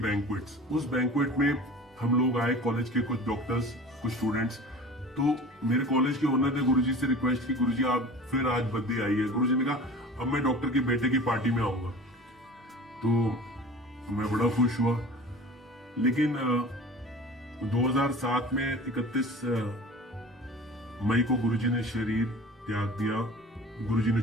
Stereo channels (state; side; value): normal; both; correlation 0.39